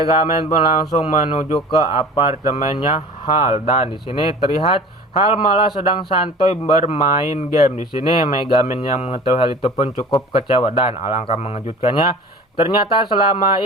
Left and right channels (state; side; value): normal; both; correlation 0.42